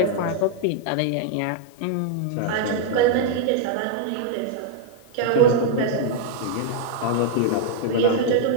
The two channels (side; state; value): both; different; correlation -0.01